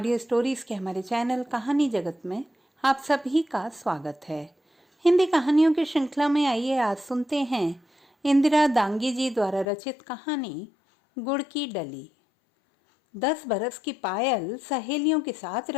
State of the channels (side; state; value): right; drops out; at 9.7 s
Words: स्टोरीज के हमारे चैनल कहानी जगत में आप सभी का स्वागत है। हिंदी कहानियों की श्रृंखला में आइए आज सुनते हैं इंदिरा दांगी जी द्वारा रचित कहानी गुड़ की डली। 10 बरस की पायल सहेलियों के साथ